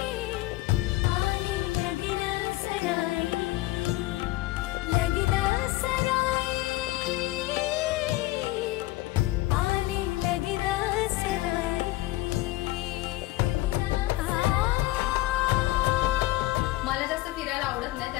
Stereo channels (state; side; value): quieter; right; 18.3 dB